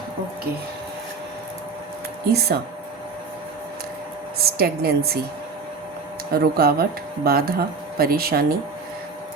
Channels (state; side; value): quieter; left; 4.5 dB